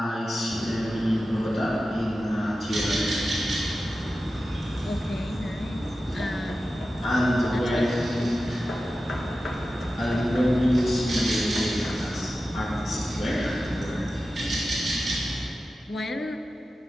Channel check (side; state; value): both; normal; correlation 0.93